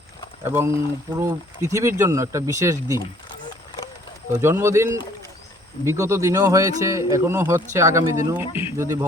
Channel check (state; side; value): normal; both; correlation 0.58